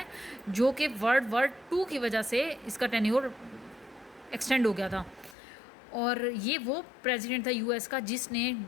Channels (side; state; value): right; drops out; at 5.4 s